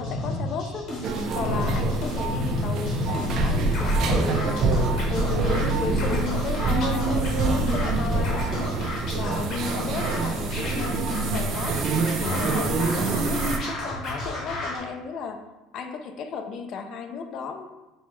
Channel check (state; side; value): normal; both; correlation 0.53